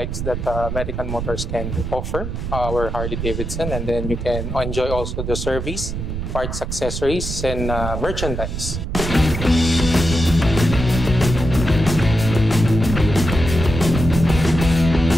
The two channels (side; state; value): right; noise; rumble, 4 dB below the sound